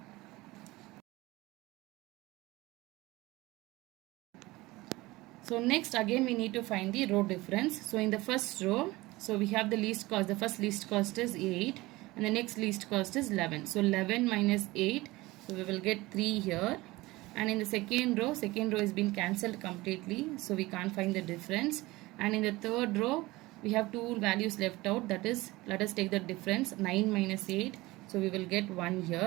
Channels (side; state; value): left; quieter; 20.2 dB